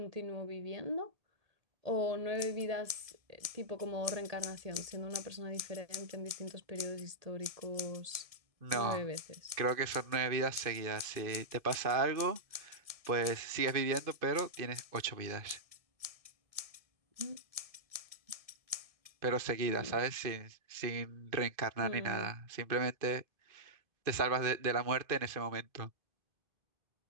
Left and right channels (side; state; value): left; late; 1.7 ms